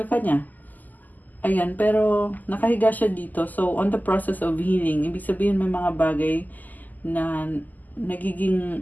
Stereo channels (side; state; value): right; late; 0.083 ms